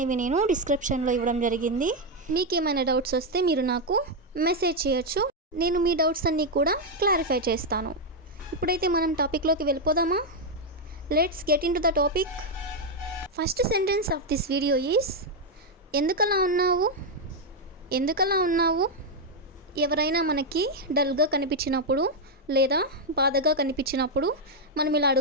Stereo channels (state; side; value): normal; both; correlation 0.02